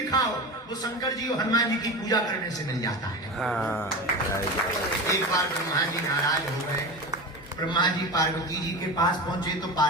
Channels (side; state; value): both; normal; correlation 0.27